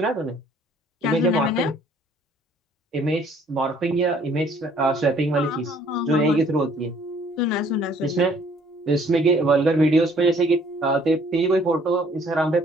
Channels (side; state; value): both; normal; correlation 0.60